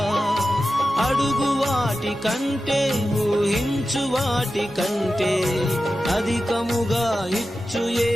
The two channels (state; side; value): normal; both; correlation 0.93